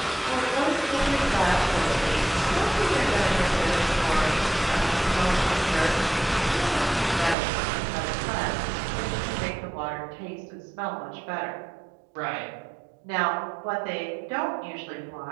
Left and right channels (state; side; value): drops out; left; at 7.4 s